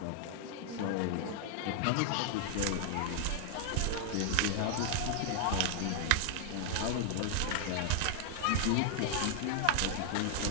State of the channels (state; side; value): different; both; correlation 0.00